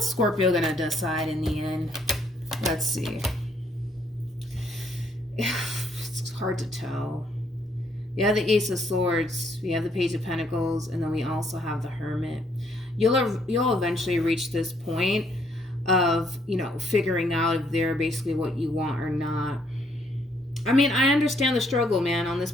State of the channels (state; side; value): normal; both; correlation 0.69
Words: Scorpio going to decide in the end? Let's see. It's hard to tell. We have the Ace of Swords, we have the Page of Pentacles, and then we also have the Hermit. You'll eventually reach this point of, figuring out if they're basically what you want or not. I mean, I understand the struggle, man, on this